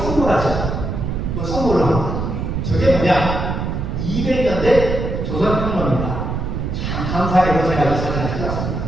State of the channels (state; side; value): noise; right; rumble, 3 dB below the sound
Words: 뭘 선물을 합니다. 저게 뭐냐? 200년대 조선혁명입니다. 참 감사하게도 제가 이 사진을